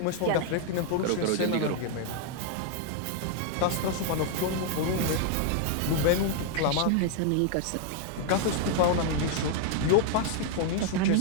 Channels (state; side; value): different; both; correlation 0.00